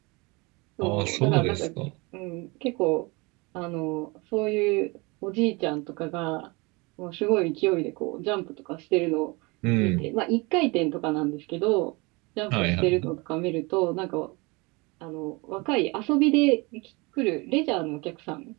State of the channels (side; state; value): left; quieter; 26.6 dB